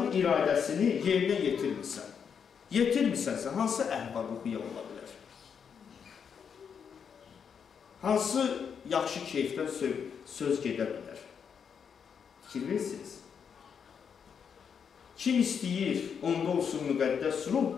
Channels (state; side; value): quieter; right; 7.0 dB